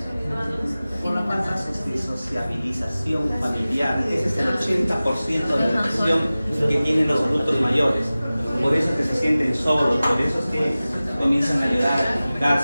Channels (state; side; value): inverted; both; correlation -0.97